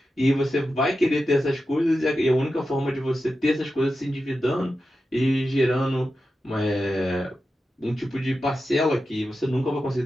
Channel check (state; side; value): normal; both; correlation 0.91